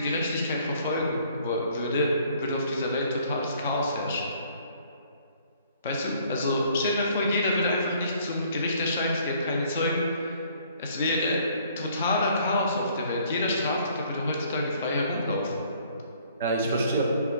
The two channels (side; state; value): both; inverted; correlation -0.61